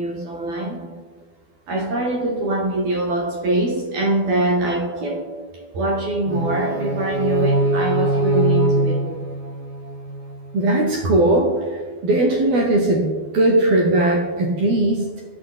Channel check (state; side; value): late; left; 12 ms